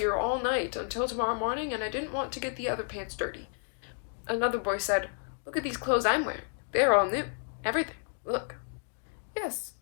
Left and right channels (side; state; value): right; silent; 57 dB below the other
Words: all night until tomorrow morning, and I didn't want to get the other pants dirty. Another boy said, Look at these clothes I'm wearing. They're all new. Everything. Look. Yes,